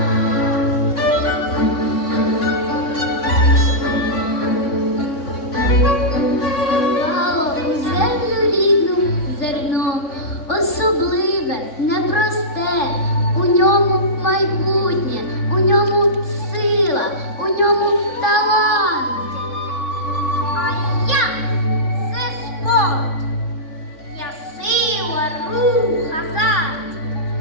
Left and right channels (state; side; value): late; right; 3.6 ms